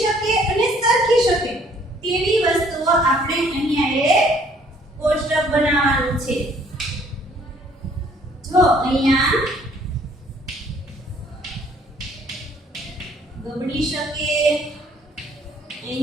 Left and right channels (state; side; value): normal; both; correlation 0.60